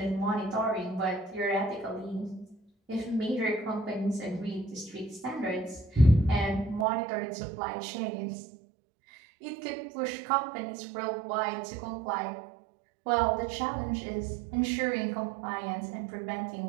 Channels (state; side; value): drops out; left; at 6.9 s